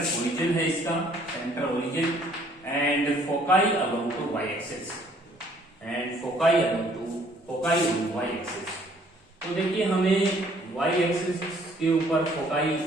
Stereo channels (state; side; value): normal; both; correlation 0.61